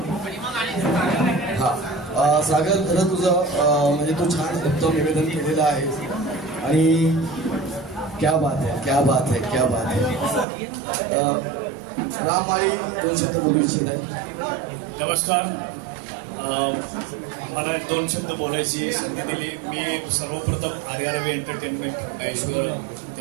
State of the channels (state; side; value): drops out; left; at 10.5 s